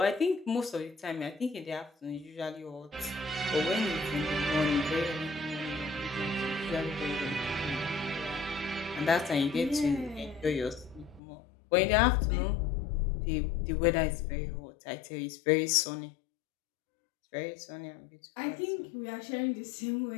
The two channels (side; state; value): right; drops out; at 11.2 s